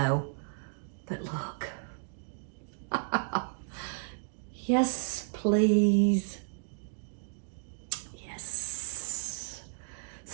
but look. Yes, please. Yes.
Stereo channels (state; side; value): silent; left; digital silence